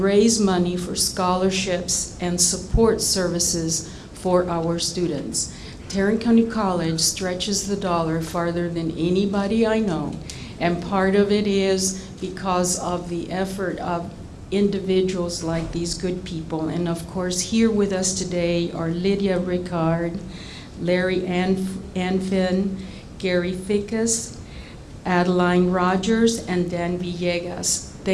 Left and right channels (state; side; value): identical; both; correlation 1.00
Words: raise money for scholarships and support services for our students. Tarrant County College stretches the dollar farther than anybody I know, and part of it is because of the effort of individuals like these good people. And of course, here with us today are Lydia Ricard, Larry Anfin, Gary Fickus, Adeline Rogers, and Dan Villegas.